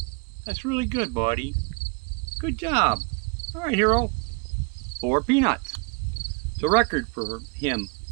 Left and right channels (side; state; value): left; quieter; 31.6 dB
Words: That's really good, buddy. Good job. All right, Hero. 4 peanuts. It's a record for him.